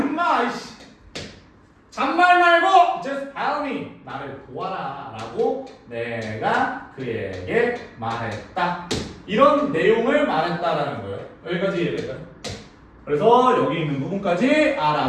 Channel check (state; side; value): identical; both; correlation 1.00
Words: 이씨. 잔말 말고 just help me. 나를 도와라 라고 내가 그에게 말했다. 이런 내용을 말했다라는 거예요. 여기까지 이해될까요? 그래서 여기 있는 부분까지